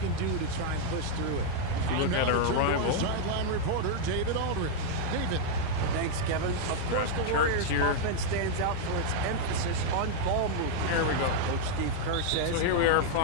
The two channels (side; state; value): both; different; correlation 0.00